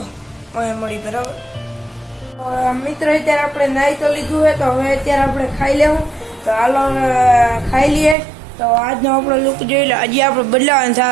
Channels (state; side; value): drops out; left; at 8.2 s